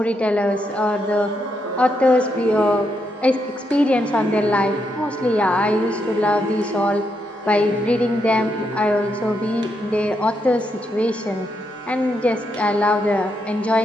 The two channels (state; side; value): normal; both; correlation 0.80